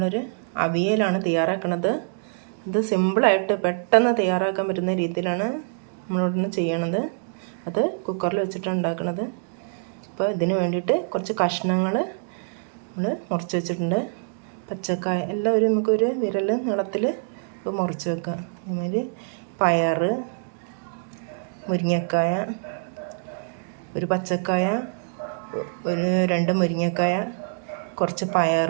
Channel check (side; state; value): left; silent; digital silence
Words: അവിയലാണ് തയ്യാറാക്കുന്നത്. ഇത് സിമ്പിളായിട്ട് പെട്ടെന്ന് തയ്യാറാക്കാൻ പറ്റുന്ന രീതിയിലാണ് നമ്മളിവിടുന്ന് ചെയ്യണത്. അത് കുക്കറിൽ വെച്ചിട്ടാണ് ഉണ്ടാക്കുന്നത്. അപ്പോൾ ഇതിന് വേണ്ടിയിട്ട് കുറച്ച് കഷ്ണങ്ങൾ നമ്മൾ മുറിച്ച് വെച്ചിട്ടുണ്ട്. പച്ചക്കായ എല്ലാം നമുക്കൊരു വിരൽ നീളത്തിൽ മുറിച്ച് വെക്കാം. അതുമാതിരി പയർ, മുരിങ്ങക്കായ, ഒരു പച്ചക്കായ, ഒരു 2 മുരിങ്ങക്കായ, കുറച്ച് പയർ,